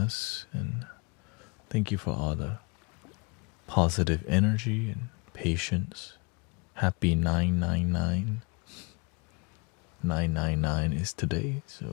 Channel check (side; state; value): right; quieter; 30.7 dB